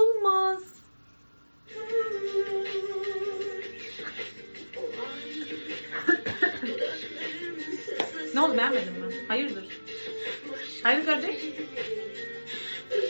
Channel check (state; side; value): inverted; both; correlation -1.00